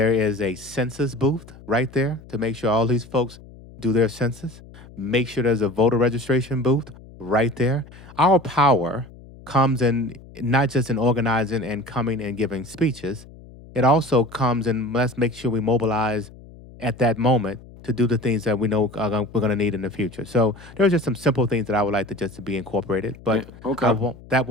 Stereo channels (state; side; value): noise; left; hum, 20 dB below the sound